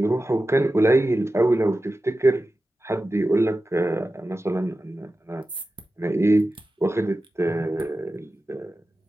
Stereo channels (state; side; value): normal; both; correlation 0.93